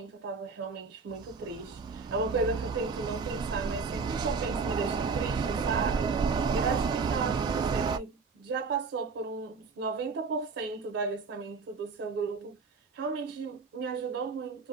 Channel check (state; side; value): quieter; left; 4.7 dB